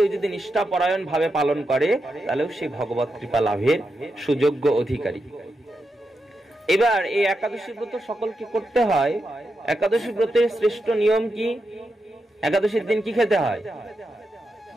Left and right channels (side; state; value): both; normal; correlation 0.86